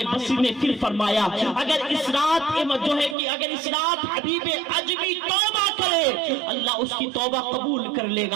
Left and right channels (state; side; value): drops out; left; at 3.2 s